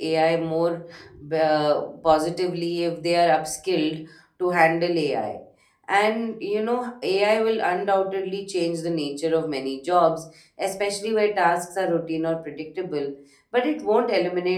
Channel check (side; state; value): both; identical; correlation 1.00